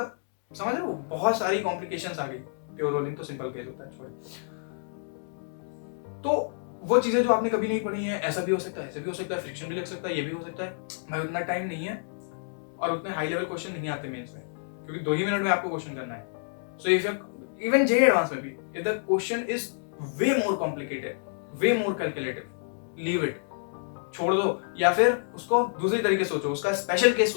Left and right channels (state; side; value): silent; right; digital silence